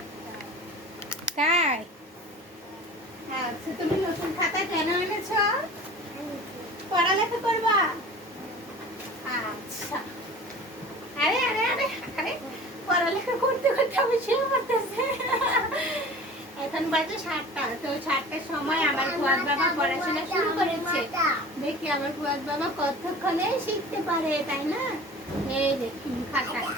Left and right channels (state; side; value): normal; both; correlation 0.40